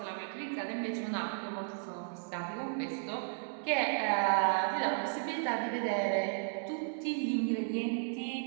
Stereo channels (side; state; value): left; silent; digital silence